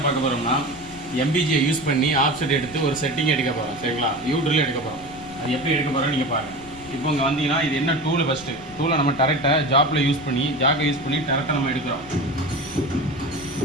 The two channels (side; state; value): left; noise; rumble, 20 dB below the sound